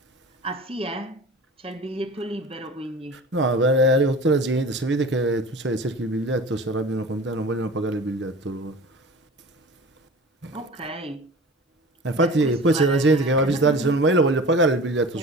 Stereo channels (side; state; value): both; normal; correlation 0.38